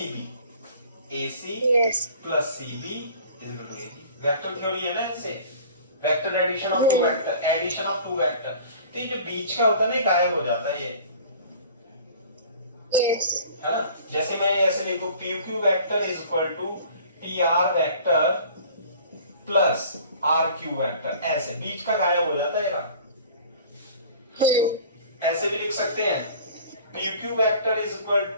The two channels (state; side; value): inverted; both; correlation -0.46